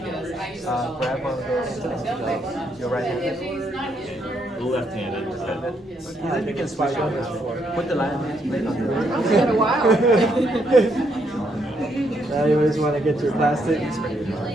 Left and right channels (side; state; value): both; normal; correlation 0.75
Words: Grab one of those, your right hand. Left-handed. Yeah, you can swipe on this before. Put the line plate on the It's been a while. Now you always want to get your plastic. Make sure